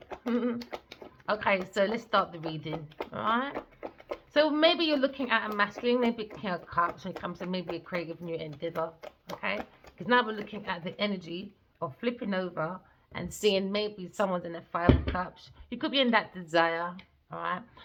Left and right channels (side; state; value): both; identical; correlation 1.00